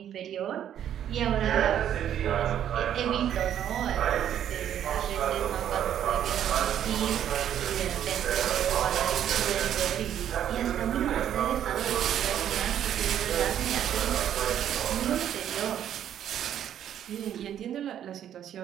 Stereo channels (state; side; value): quieter; left; 10.2 dB